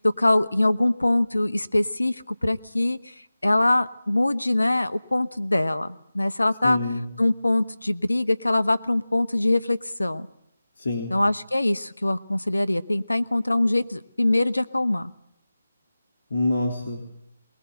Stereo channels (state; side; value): inverted; both; correlation -0.98